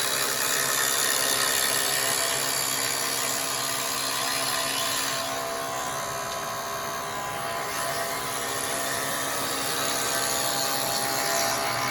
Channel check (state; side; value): noise; right; rumble, 25 dB below the sound